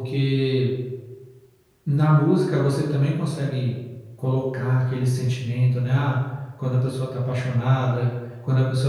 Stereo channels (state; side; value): identical; both; correlation 1.00